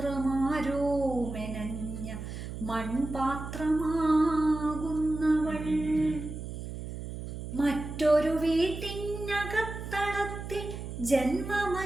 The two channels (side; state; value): right; noise; hum, 8 dB below the sound